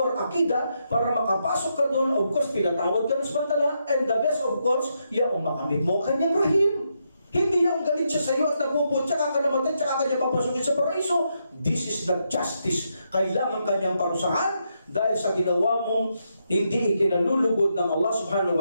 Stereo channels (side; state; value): both; inverted; correlation -0.81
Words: akida, para makapasok ka doon, of course, pinatawad ka ng samantala, and the best, of course, yung makamit mo ang kanyang rahim. Hindi yung galit siya sa iyo at nagpupun, tsaka ka namatay, tsaka kanya papasukin sa paraiso. This is not justice. Kailangan kanyang parusahan dahil sa ginawa mong hindi ikinalulugod ng Allah